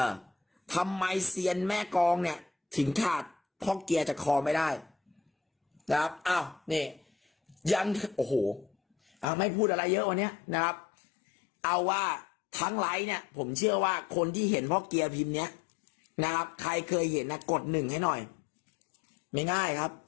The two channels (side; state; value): right; drops out; at 9.2 s